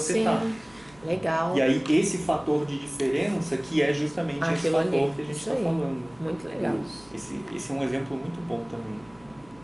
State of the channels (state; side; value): noise; right; hum, 27 dB below the sound